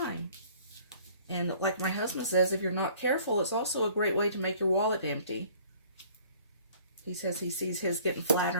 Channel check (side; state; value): both; inverted; correlation -0.54